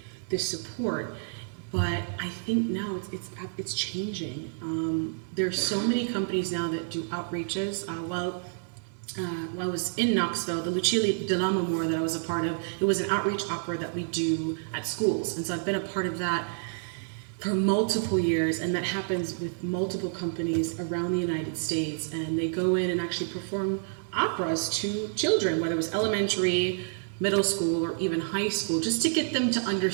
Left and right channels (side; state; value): left; silent; 59 dB below the other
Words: this support. But I think now it's changing. There's so many companies now that do outreaches. While I was in Knoxville, the Lucia dell'Amore that I was a part of, it was an outreach opera that we do at schools. And so I've been a part of that for multiple years, and that happens with multiple companies around the United States. And they go in and actually perform operas to children, whether it was elementary, middle school, or even high school, just to get them to